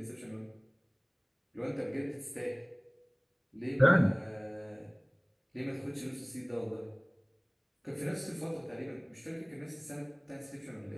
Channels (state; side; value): identical; both; correlation 1.00